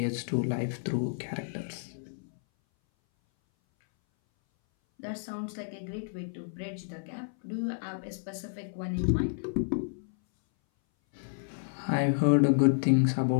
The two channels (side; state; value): right; silent; 57 dB below the other